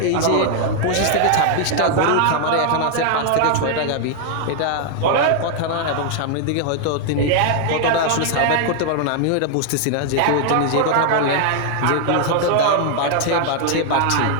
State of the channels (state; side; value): different; both; correlation 0.00